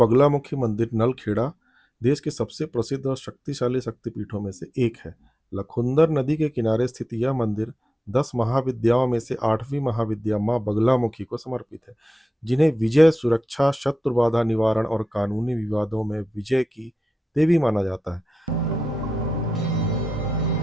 मंदिर नलखेड़ा देश के सबसे प्रसिद्ध और शक्तिशाली शक्तिपीठों में से एक है। लखुंदर नदी के किनारे स्थित यह मंदिर 10 महाविद्याओं में से 8वीं महाविद्या माँ बगलामुखी को समर्पित है, जिन्हें विजय, सुरक्षा, शत्रु बाधा निवारण और कानूनी विवादों में विजय की देवी माना जाता है।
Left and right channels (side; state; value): both; normal; correlation 0.92